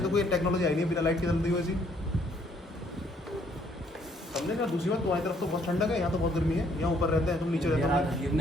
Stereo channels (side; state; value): both; normal; correlation 0.66